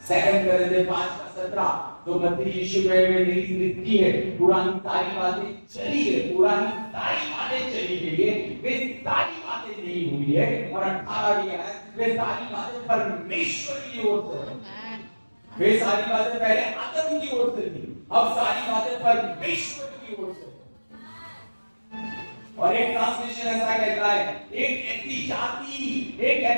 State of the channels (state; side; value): inverted; both; correlation -1.00